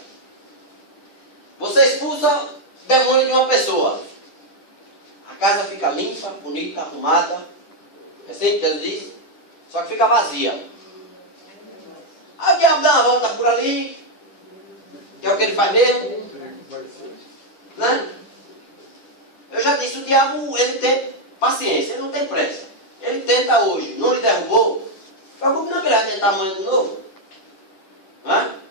Você expulsa demônio de uma pessoa. A casa fica limpa, bonita, arrumada. É assim que Jesus diz? Só que fica vazia. Aí o diabo dá uma volta por ali. Que é o que ele faz mesmo. Né? Eu já disse, o diabo, ele tem paciência, ele não tem pressa. Ele tenta hoje, não lhe derrubou. Preocupe não que ele vai tentar amanhã de novo. Né?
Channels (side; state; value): right; late; 10 ms